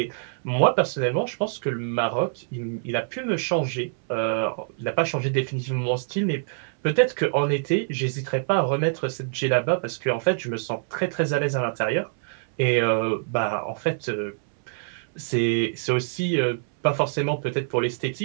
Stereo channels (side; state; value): left; silent; 62 dB below the other